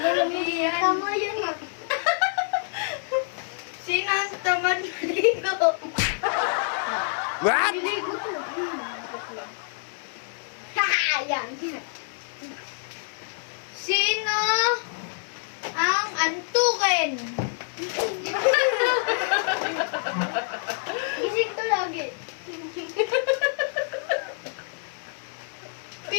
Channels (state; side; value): silent; right; 60 dB below the other